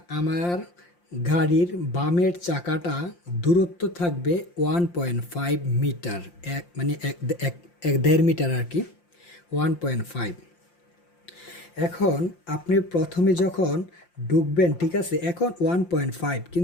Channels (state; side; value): late; right; 5.7 ms